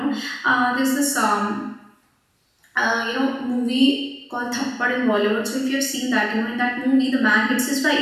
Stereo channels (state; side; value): identical; both; correlation 1.00